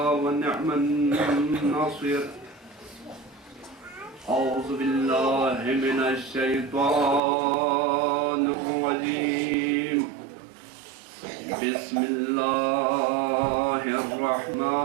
ونعم الناصر۔ اعوذ باللہ من الشیطان الرجیم، بسم اللہ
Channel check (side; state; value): left; drops out; at 7.2 s